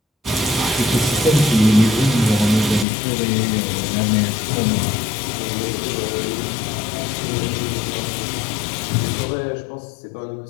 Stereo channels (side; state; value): right; drops out; at 2.9 s